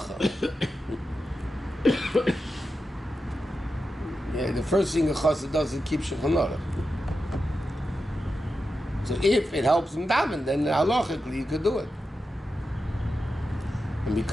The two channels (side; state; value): both; normal; correlation 0.90